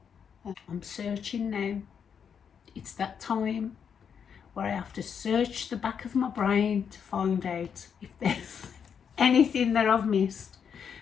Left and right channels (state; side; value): quieter; right; 7.2 dB